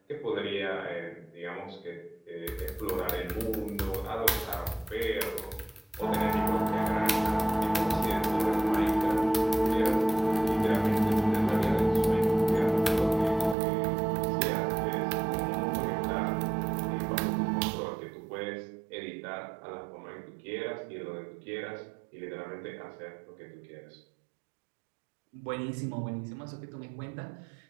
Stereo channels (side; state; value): left; drops out; at 13.6 s